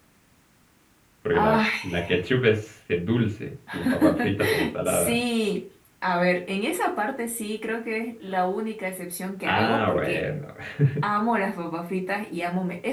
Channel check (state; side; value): identical; both; correlation 1.00